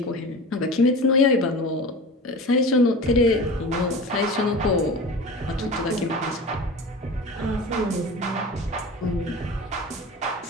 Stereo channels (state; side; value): normal; both; correlation 0.34